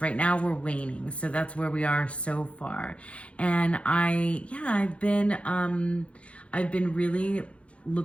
now we're waning, so that's where we are so far. And I've been really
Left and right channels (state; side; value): late; right; 0.062 ms